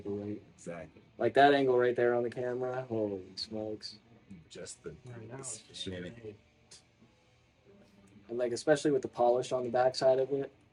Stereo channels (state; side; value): identical; both; correlation 1.00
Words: Exactly. Like that angle right there on the camera. Holy smokes! Just the shimmy. And like especially with the polish on the backside of it.